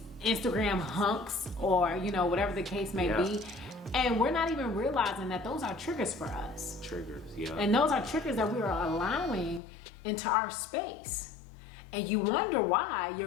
Instagram hunks, or whatever the case may be. And we're not even realizing that those are triggers for us. Triggers, yeah. And those are triggers that we are allowing into our space. And you wonder why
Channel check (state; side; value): drops out; right; at 9.6 s